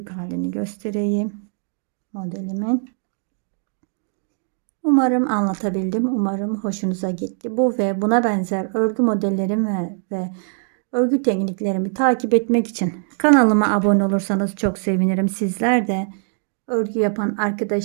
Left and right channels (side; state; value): left; silent; 56 dB below the other